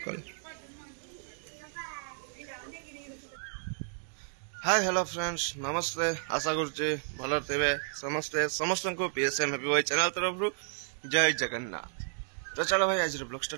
हाय हेलो फ्रेंड्स नमस्ते आशा करुचे भल थे समस्ते समस्त को पीएसएम हैप्पी बॉय चैनल तरफ जय जगन्नाथ। तो चलो भाई आज ब्लॉग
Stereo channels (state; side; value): silent; left; digital silence